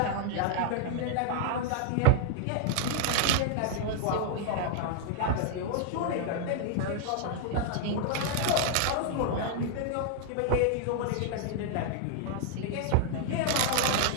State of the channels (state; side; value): different; both; correlation 0.00